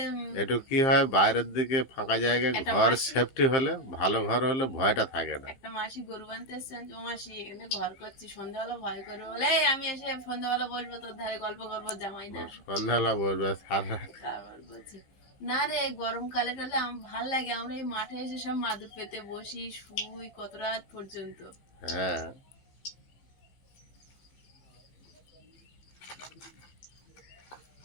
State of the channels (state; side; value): late; right; 15 ms